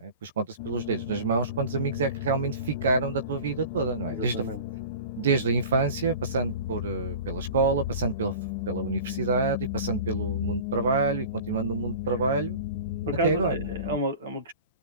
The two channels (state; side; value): inverted; both; correlation -0.37